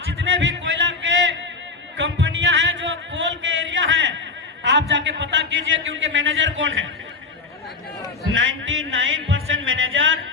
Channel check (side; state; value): right; quieter; 4.2 dB